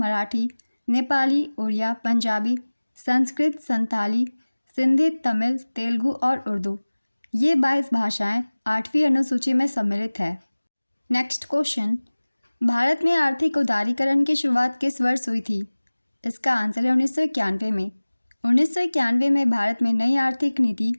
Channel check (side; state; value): both; inverted; correlation -1.00